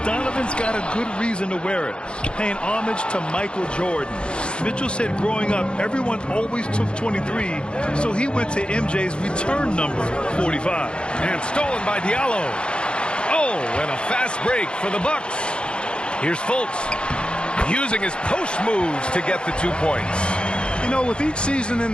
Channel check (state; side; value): late; right; 0.054 ms